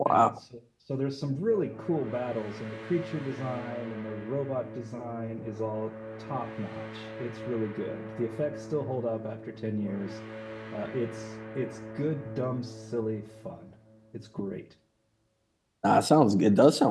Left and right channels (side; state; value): both; identical; correlation 1.00